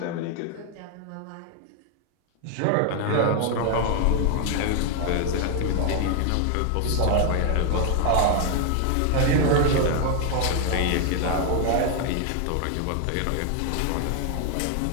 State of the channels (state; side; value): different; both; correlation 0.00